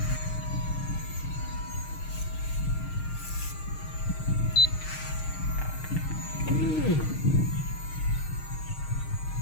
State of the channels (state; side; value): late; right; 6.5 ms